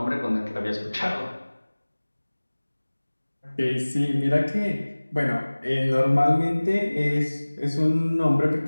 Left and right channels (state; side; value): inverted; both; correlation -1.00